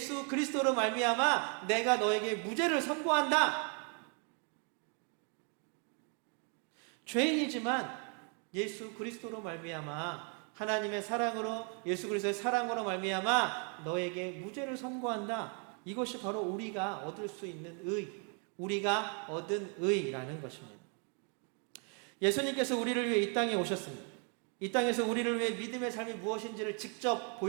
그리스도로 말미암아 내가 너에게 무죄를 선고한다. 죄인이지만 예수 그리스도로 말미암아, 하나님의 사랑으로, 예수 그리스도의 사랑으로 말미암아 너에게 무죄를 선고한다. 이것이 바로 우리가 얻을 수 있는 의, 우리가 얻은 의라는 것입니다. 예수님께서 우리를 위해 이 땅에 오셨습니다. 이 땅에서 우리를 위해 믿음의 삶이 무엇인지를 직접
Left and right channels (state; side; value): quieter; left; 39.5 dB